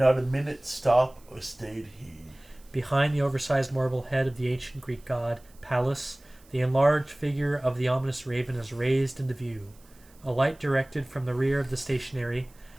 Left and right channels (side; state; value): right; noise; hiss, 28 dB below the sound